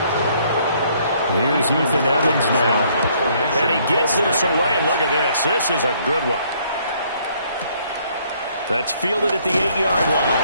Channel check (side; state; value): both; inverted; correlation -0.65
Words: Here's Ethan Evans now. And he gets this away. And look at this. This is a good one. That's fielded at the 8-yard